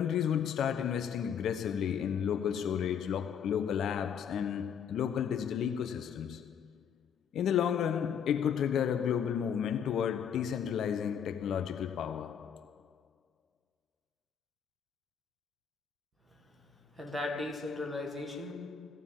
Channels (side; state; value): right; quieter; 7.8 dB